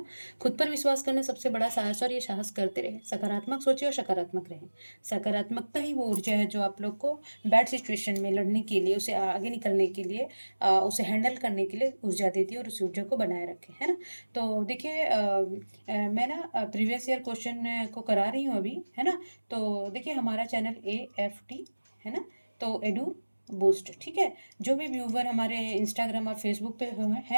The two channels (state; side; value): inverted; both; correlation -1.00